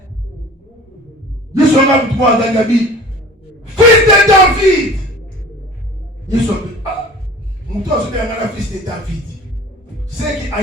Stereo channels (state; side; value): normal; both; correlation 0.43